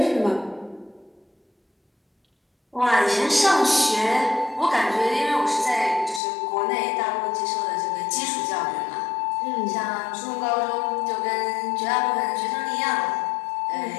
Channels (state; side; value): drops out; right; at 6.2 s